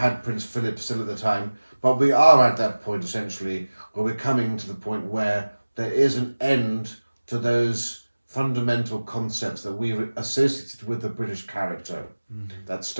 Prince Philip still at the time. But we are at that point, essentially, where we're coming to the point where there is an end to those fundamental concepts that we associated with the British character. That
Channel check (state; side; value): inverted; both; correlation -1.00